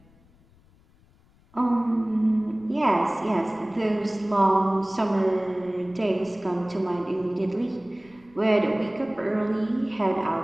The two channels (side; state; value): left; noise; rumble, 30 dB below the sound